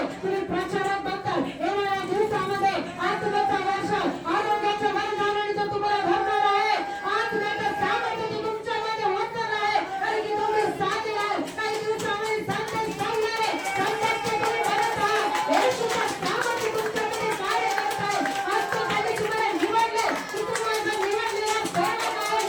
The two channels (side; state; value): both; identical; correlation 1.00